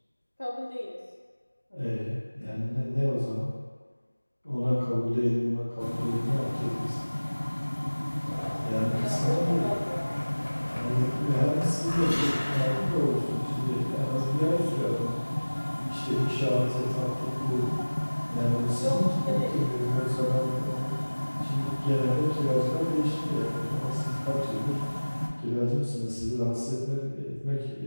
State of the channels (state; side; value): inverted; both; correlation -1.00